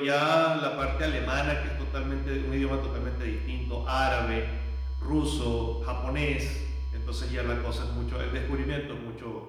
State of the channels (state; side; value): identical; both; correlation 1.00